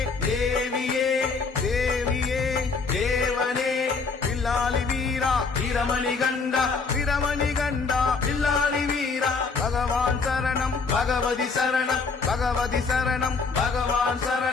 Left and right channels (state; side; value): quieter; right; 4.6 dB